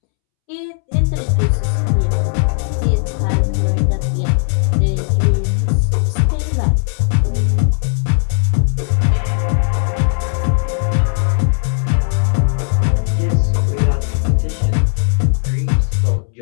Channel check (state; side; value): silent; right; 69 dB below the other